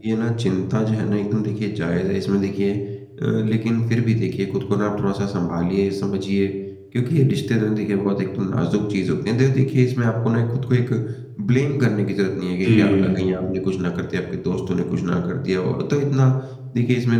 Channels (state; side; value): identical; both; correlation 1.00